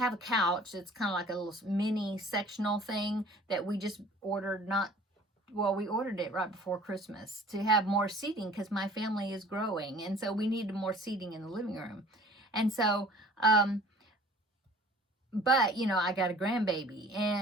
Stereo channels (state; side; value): normal; both; correlation 0.49